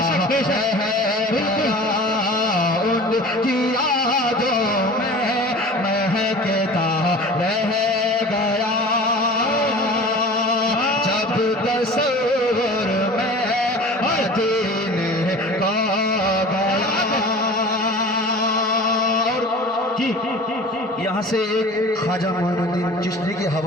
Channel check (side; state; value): both; normal; correlation 0.40